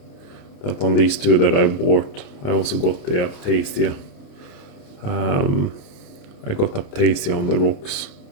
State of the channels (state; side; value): late; right; 28 ms